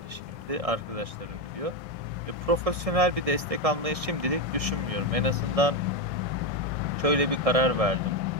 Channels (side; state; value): left; late; 1.6 ms